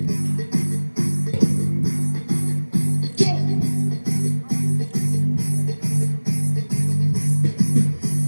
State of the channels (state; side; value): inverted; both; correlation -1.00